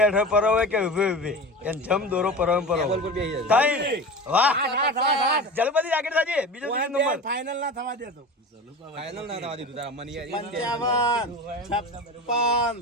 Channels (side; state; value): both; normal; correlation 0.31